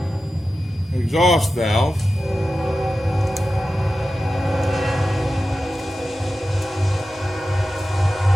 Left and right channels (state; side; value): normal; both; correlation 0.93